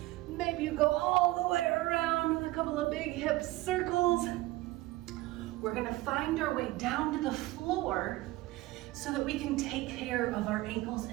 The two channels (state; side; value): quieter; left; 18.5 dB